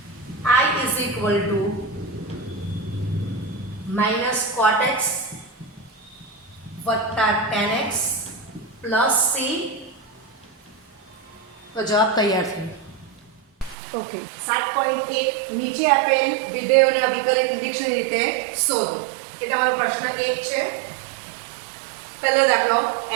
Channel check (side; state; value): left; drops out; at 13.8 s